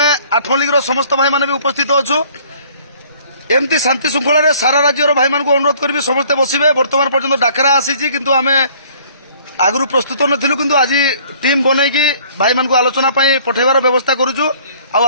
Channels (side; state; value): both; inverted; correlation -0.56